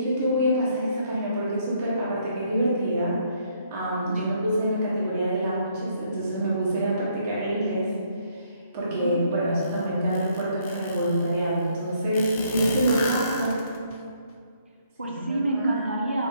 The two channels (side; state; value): both; inverted; correlation -0.69